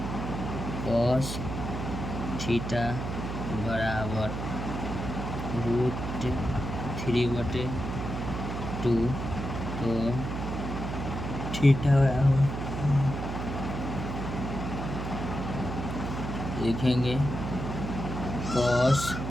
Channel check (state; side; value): noise; right; hum, 5 dB below the sound